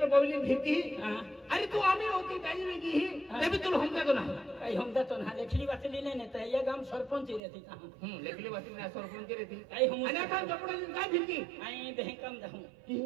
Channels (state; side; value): drops out; left; at 7.4 s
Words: बवली भीती हां अरे तू आम्ही होती काही वेगळी ही तभी तुला हमका तो ना काही हम तो ना लेखली वाचली नाही तर या गाम सरपंच रहती कहां लेखली वासी में सरपंच रहती काही हम आणि आता कपडा काय भीती आई बहकम जाऊं